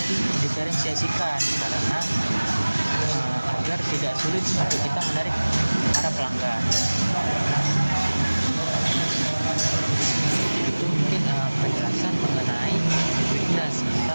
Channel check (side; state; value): both; inverted; correlation -1.00